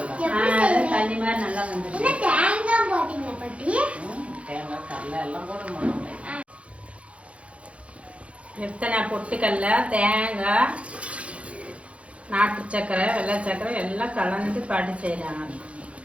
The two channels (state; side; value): late; left; 0.062 ms